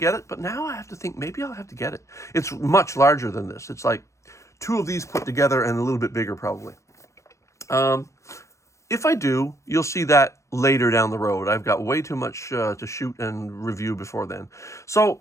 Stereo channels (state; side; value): late; right; 0.14 ms